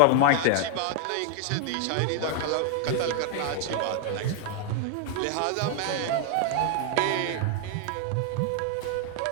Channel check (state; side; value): different; both; correlation 0.00